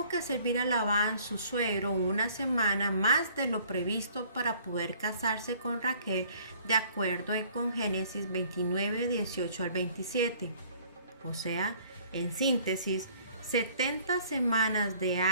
que servir a Labán, su suegro, una semana más de lo previsto para poder casarse con Raquel, de acuerdo con Génesis 29, 18 al 27. O sea, en síntesis, 70 semanas de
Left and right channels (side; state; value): both; inverted; correlation -0.56